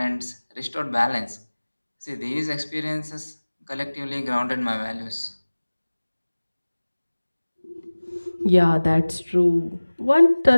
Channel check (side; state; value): both; inverted; correlation -1.00